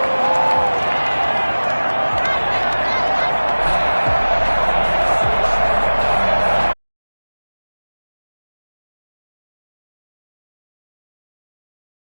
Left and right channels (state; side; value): inverted; both; correlation -1.00